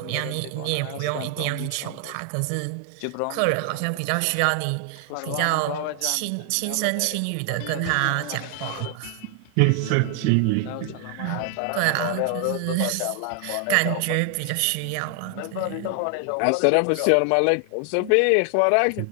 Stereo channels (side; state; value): both; different; correlation 0.00